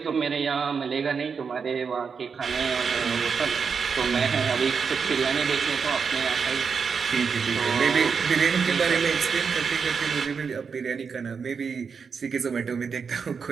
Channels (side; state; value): left; quieter; 5.8 dB